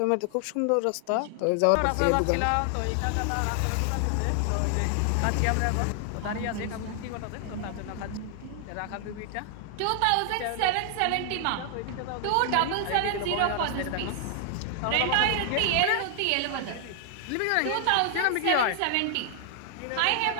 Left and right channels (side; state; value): both; different; correlation 0.00